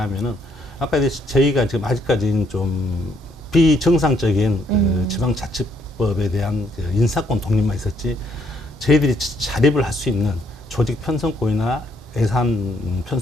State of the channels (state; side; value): normal; both; correlation 0.70